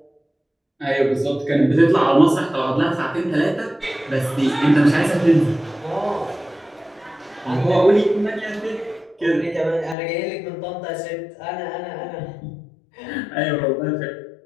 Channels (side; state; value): right; drops out; at 10.0 s